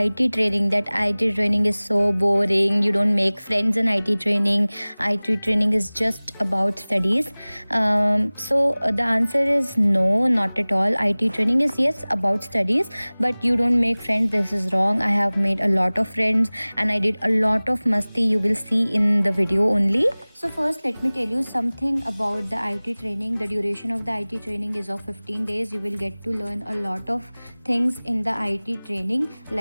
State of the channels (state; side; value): inverted; both; correlation -1.00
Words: training, that IT training is so boring, you don't make friends in IT training. IT training is just about studies. The answer is no, not at all. IT training is yes about studies, but you don't make friends. This is wrong. I have made a lot of friends and I did a lot of masti. You will see in the video only. So first, let me tell you something about the IT training. The duration of the IT training is of 15 days. You will get to learn a lot of things in the IT training